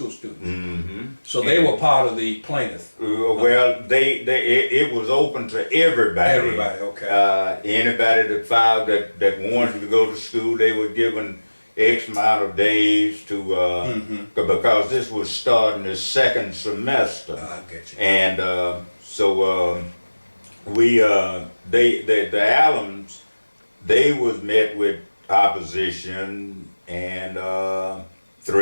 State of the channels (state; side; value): inverted; both; correlation -1.00